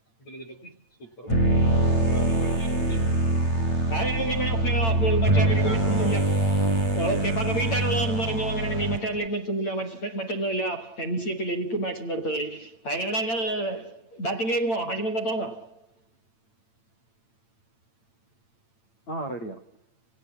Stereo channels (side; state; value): right; late; 8.8 ms